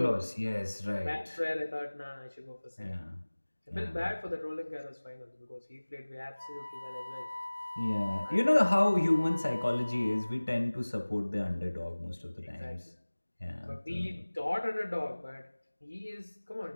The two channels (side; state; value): both; inverted; correlation -1.00